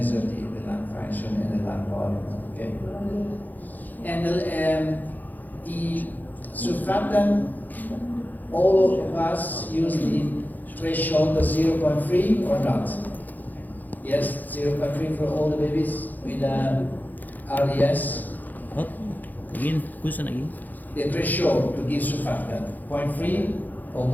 the lung function and the lung volume. Okay. And the surfactant, all of us use the threshold of 0.3 or not? Yes, 0.3 for all the babies with RDS. What? Again, question again. The threshold to give surfactant, 0.3 or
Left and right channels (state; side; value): late; right; 0.084 ms